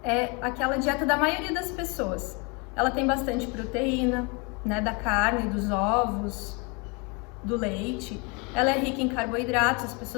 é aquela dieta da maioria das pessoas. Ela tem bastante proteína, né, da carne, dos ovos, do leite. Ela é rica em carboidratos, as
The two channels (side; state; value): right; quieter; 31.0 dB